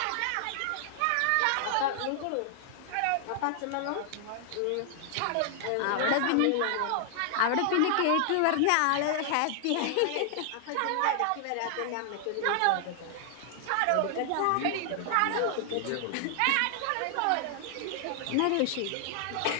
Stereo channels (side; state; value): both; different; correlation 0.00